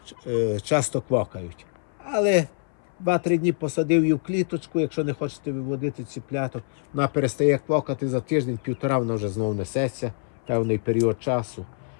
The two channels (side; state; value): right; silent; 57 dB below the other